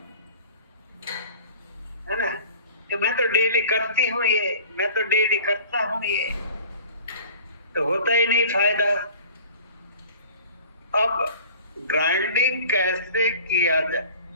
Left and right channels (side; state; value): both; inverted; correlation -0.45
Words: है ना, कि मैं तो डेली करती हूँ ये, मैं तो डेली करता हूँ ये, तो होता ही नहीं फायदा। अब ग्राइंडिंग कैसे किया जाए।